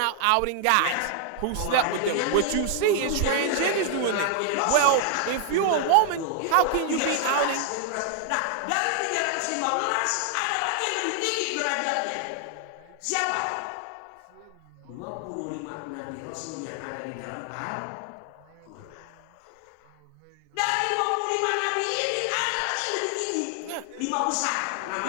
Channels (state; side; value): different; both; correlation 0.00